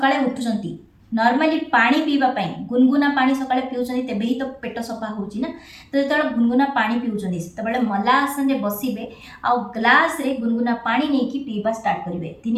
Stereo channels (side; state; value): both; identical; correlation 1.00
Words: उठुचंती नॉर्मली पानी पीवा पाई गुनगुना पानी सकाळे पिउछन्ती तेबे ही तो पेट सफा होउची ना। तो जेतबेले गुनगुना पानी पिउछन्ती सेतबेले मला आसन रे बसिबे आ ग्लास रे गुनगुना पानी नेकी पीवा स्टार्ट करिवे।